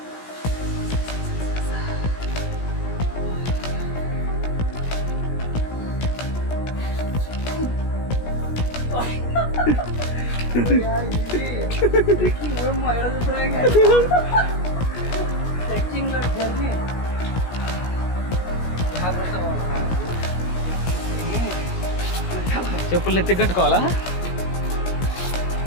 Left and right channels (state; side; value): late; right; 17 ms